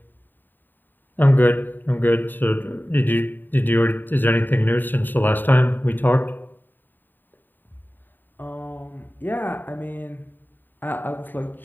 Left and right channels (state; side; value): late; right; 0.091 ms